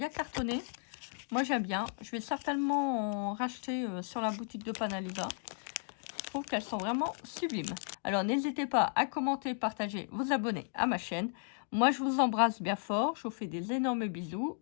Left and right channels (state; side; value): silent; right; digital silence